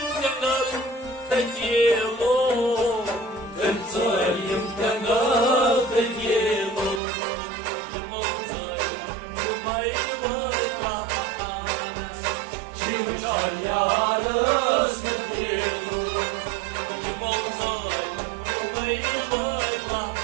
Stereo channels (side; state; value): left; drops out; at 7.0 s